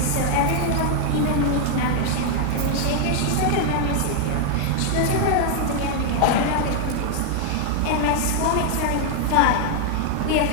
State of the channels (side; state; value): both; different; correlation 0.00